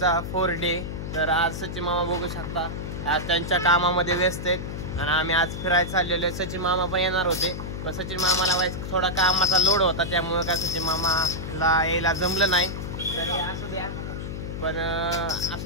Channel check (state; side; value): noise; left; hum, 6 dB below the sound